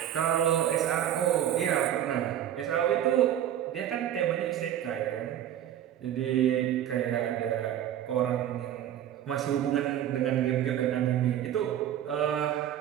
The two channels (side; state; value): left; quieter; 11.0 dB